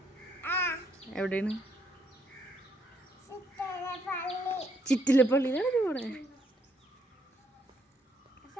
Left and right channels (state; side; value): normal; both; correlation 0.71